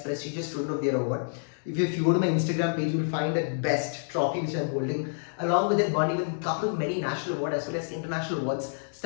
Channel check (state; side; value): silent; right; digital silence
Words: prestigious Student of the Year award. If you go to my Instagram page, you will find that best trophy which I'm holding. Along with that, won even a couple of many national awards as well as international awards,